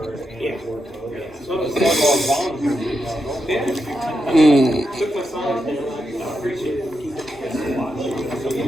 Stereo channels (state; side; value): normal; both; correlation 0.85